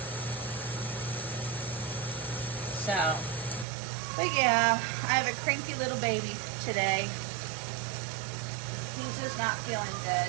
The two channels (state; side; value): drops out; left; at 3.7 s